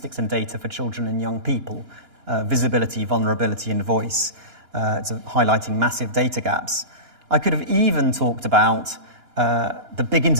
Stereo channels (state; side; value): late; left; 2.9 ms